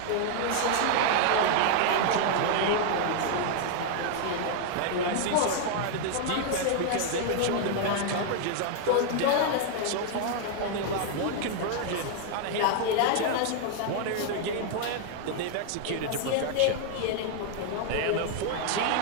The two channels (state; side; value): different; both; correlation 0.00